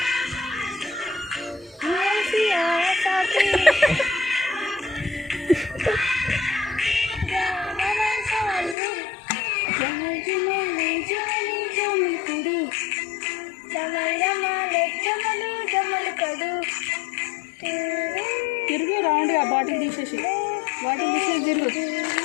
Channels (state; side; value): drops out; right; at 8.8 s